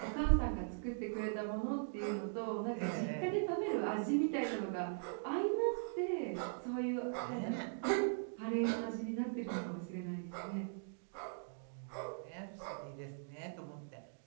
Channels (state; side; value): silent; left; digital silence